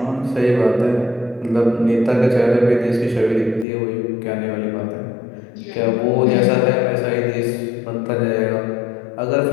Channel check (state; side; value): drops out; right; at 3.7 s